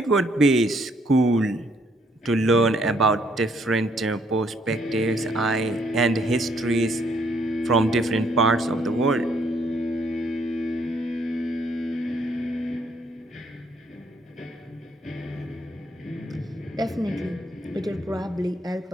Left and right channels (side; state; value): both; normal; correlation 0.69